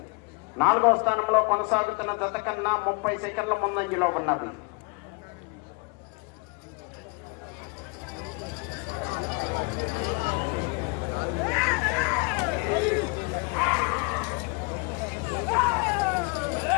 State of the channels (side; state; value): right; quieter; 31.2 dB